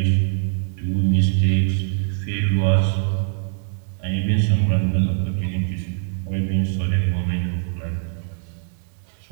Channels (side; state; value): left; silent; digital silence